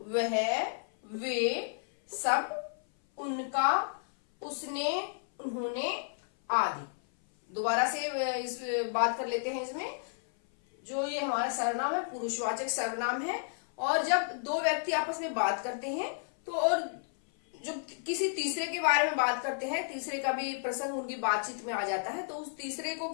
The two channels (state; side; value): silent; right; 56 dB below the other